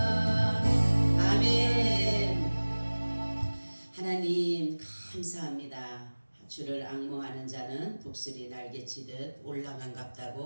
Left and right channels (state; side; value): inverted; both; correlation -1.00